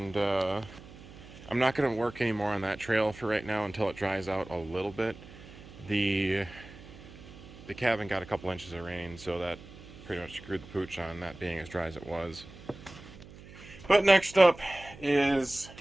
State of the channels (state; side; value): noise; right; hum, 18 dB below the sound